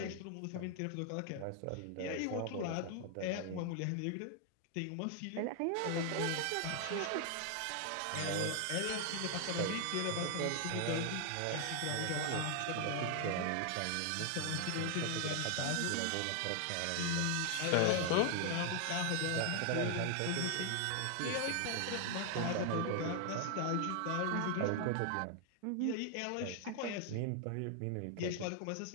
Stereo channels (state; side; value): different; both; correlation 0.00